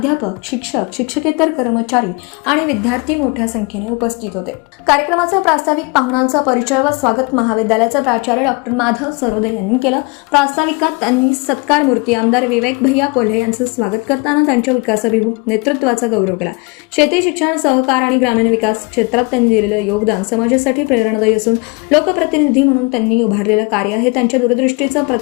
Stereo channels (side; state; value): right; quieter; 29.2 dB